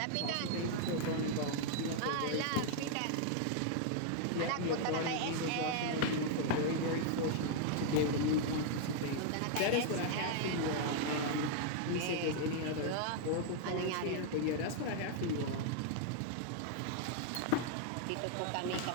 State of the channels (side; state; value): both; different; correlation -0.01